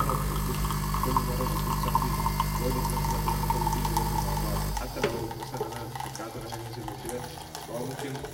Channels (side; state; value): both; identical; correlation 1.00